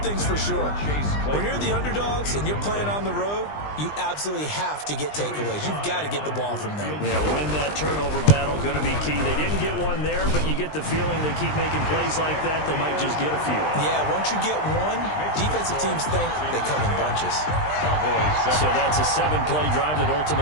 thing's for sure. When you're the underdogs and you're playing on the road, you absolutely have to get takeaways. You've got to get the ball from them. Yeah, win that turnover battle, going to be key. They didn't get one there, but you get the feeling they keep making plays like that, they might just get a few. Yeah, once you get one, defensive teams think they come in bunches. So that's a 7-play drive that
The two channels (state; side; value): late; right; 20 ms